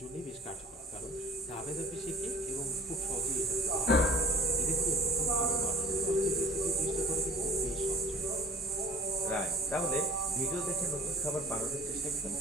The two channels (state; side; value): normal; both; correlation 0.47